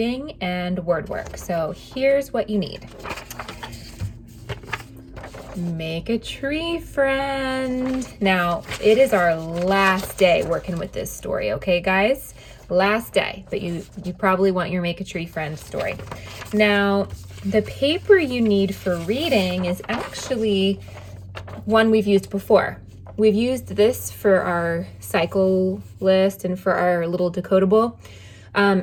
and word work. So here's what you need. Make a tree friend. Now, it is our last day working with this story, okay, guys? Last day, but you probably want your make a tree friend story. Now, the paper you need for reading is actually one we've used before. We've used this for our cycle list and for our little decodable.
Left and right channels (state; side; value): identical; both; correlation 1.00